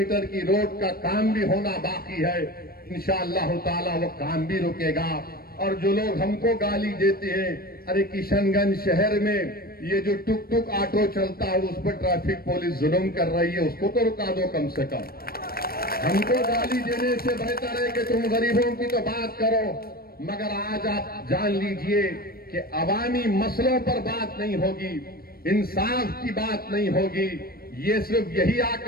کی روڈ کا کام بھی ہونا باقی ہے۔ انشاءاللہ تعالی وہ کام بھی رکے گا۔ اور جو لوگ ہم کو گالی دیتے ہیں، ارے کشن گنج شہر میں یہ جو ٹک ٹک آٹو چلتا ہے اس پر ٹریفک پولیس ظلم کر رہی ہے، اس کو تو رکا دو کم سے کم۔ ہم کو گالی دینے سے بہتر ہے کہ تم غریبوں کی تو بات کرو، مگر آج آپ جان لیجئے کہ عوامی مسئلوں پر بات نہیں ہوگی، انصاف کی بات نہیں ہوگی۔ یہ صرف یہی آ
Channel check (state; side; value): late; right; 0.44 ms